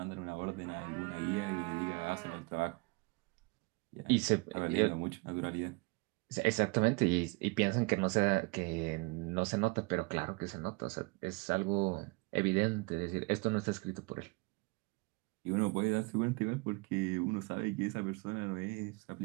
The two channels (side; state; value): left; quieter; 27.9 dB